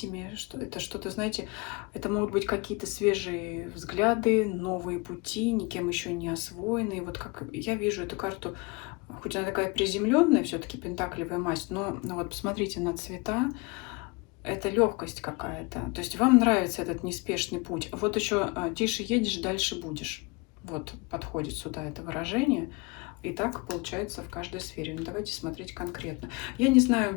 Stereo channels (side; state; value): right; quieter; 27.0 dB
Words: что это что-то, знаете, это могут быть какие-то свежие взгляды, новые пути, никем еще не освоенные. Вот как я вижу эту карту, хоть она такая приземленная, все-таки пентаклевая масть, но вот посмотрите на цвета, это легкость какая-то. То есть вам нравится этот неспешный путь. Вот еще тише едешь, дальше будешь. Вот подходит сюда это выражение. И так получается в каждой сфере. Но давайте смотреть конкретно. Я не